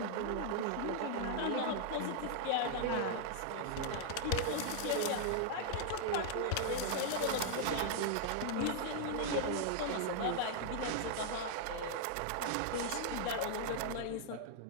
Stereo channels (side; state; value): both; different; correlation -0.01